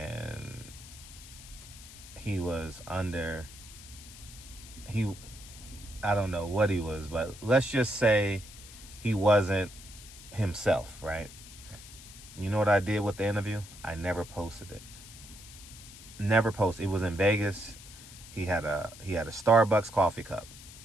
he was under, I don't know what he was, but let's just say he wasn't himself, right? You know what I did with the interview? I never posted it. Never posted. It was in Vegas. He had a Starbucks coffee cup.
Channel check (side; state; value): left; noise; hiss, 17 dB below the sound